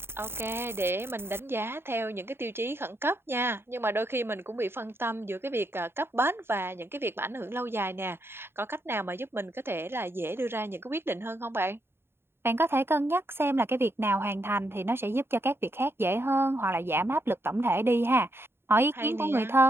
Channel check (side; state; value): left; late; 0.11 ms